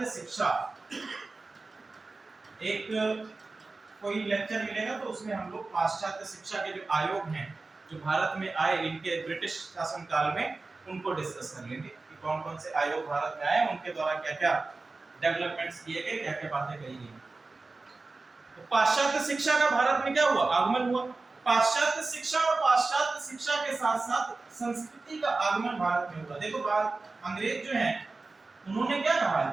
शिक्षा। एक कोई लेक्चर मिलेगा तो उसमें हम लोग पाश्चात्य शिक्षा के जो आयोग हैं जो भारत में आए इनके ब्रिटिश शासन काल में, उनको डिस्कस कर लेंगे कि कौन कौन से आयोग भारत में आए, उनके द्वारा क्या क्या डेवलपमेंट्स किए गए, क्या क्या बातें कही गई। तो पाश्चात्य शिक्षा का भारत में क्या हुआ, आगमन हुआ। पाश्चात्य शिक्षा और पाश्चात्य शिक्षा के साथ साथ संस्कृति का आगमन भारत में हुआ। देखो अंग्रेज जो हैं उन्होंने क्या कहा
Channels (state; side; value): quieter; left; 3.6 dB